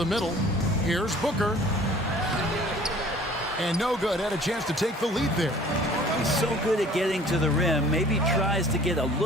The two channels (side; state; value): both; normal; correlation 0.51